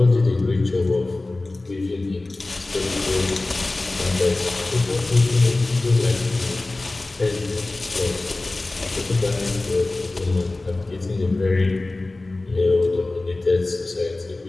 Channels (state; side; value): quieter; right; 3.0 dB